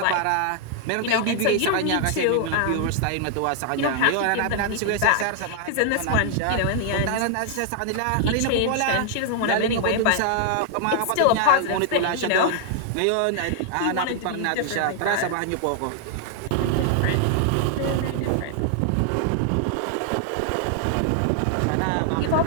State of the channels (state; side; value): different; both; correlation 0.00